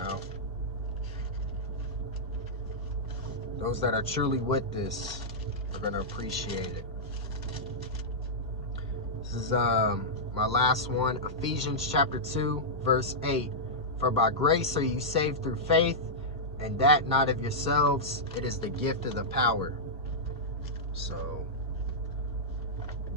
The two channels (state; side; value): normal; both; correlation -0.10